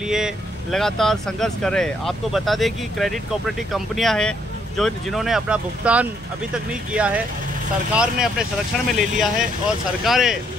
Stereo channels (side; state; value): both; normal; correlation 0.71